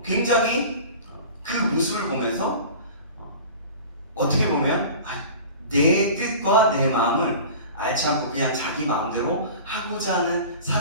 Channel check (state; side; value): inverted; both; correlation -0.38